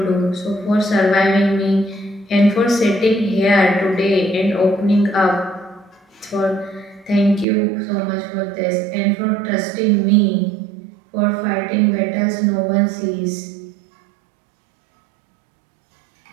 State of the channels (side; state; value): left; drops out; at 7.5 s